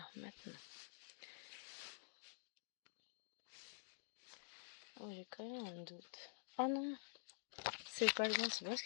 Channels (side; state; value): right; silent; digital silence